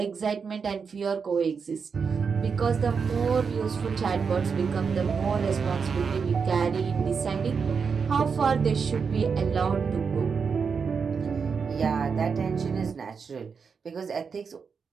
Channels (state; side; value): quieter; left; 5.7 dB